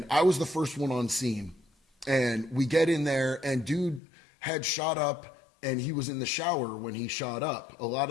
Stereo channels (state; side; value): drops out; right; at 4.0 s